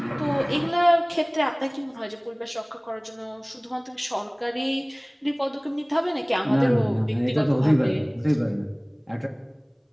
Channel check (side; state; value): both; identical; correlation 1.00